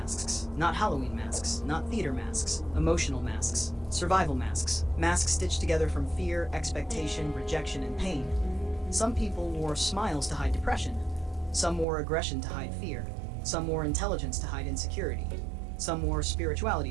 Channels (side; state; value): left; drops out; at 11.9 s